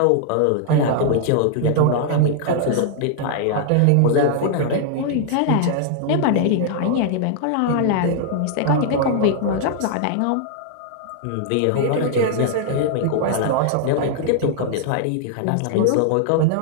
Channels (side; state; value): both; different; correlation -0.01